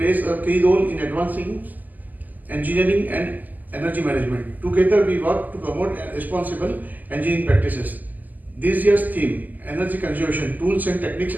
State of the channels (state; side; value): late; left; 0.083 ms